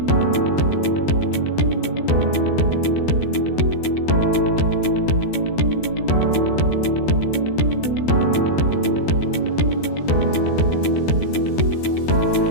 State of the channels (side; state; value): right; late; 13 ms